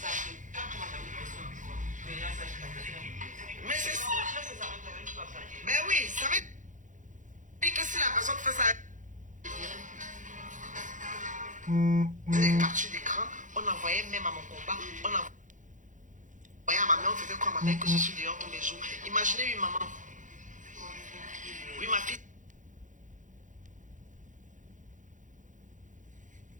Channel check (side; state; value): left; late; 0.37 ms